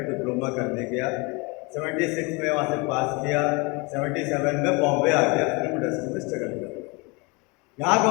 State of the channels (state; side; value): quieter; right; 28.3 dB